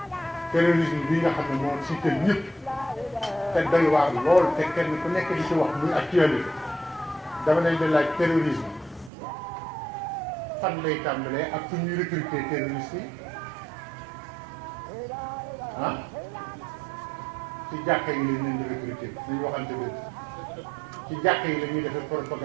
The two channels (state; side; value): drops out; left; at 9.1 s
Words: terrorisme bi nga xam ne moo siital ñëpp te doy waar lool te kenn ku nekk di ci wax muy actualité dama leen di laaj terrorisme fan lay tàmbalee ak fu ñuy recruter terroristes yi ah ci jàkka yi lañ leen di recruter nañu waxante dëgg ci jàkka yi la ñuy defee